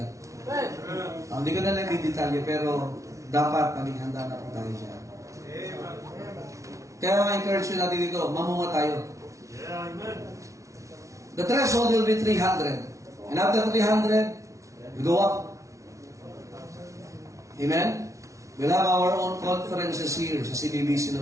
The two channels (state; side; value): late; left; 0.15 ms